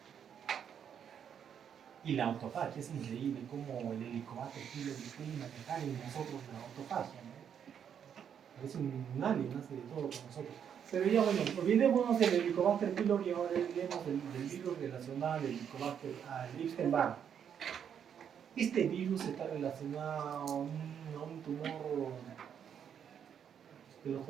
Y la autofagia es increíble cómo el Helicobacter pylori puede manejar en nosotros la autofagia, ¿no? Es un alien, hace de todo con nosotros. Pero ya bueno, olvidémonos del Helicobacter pylori y ahora hablemos del virus relacionado al Helicobacter, al Epstein-Barr. Este virus está relacionado a un tumor que los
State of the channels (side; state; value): left; quieter; 8.3 dB